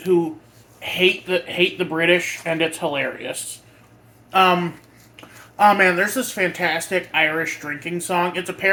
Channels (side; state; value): both; identical; correlation 1.00